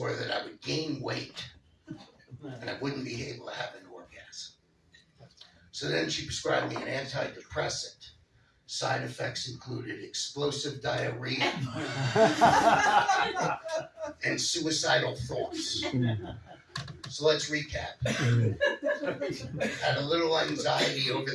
that I would gain weight, and I wouldn't be able to have an orgasm. So then she prescribed me an antidepressant, Side effects included explosive diarrhea and suicidal thoughts. So let's recap. Had a little anxiety over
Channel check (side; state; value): both; identical; correlation 1.00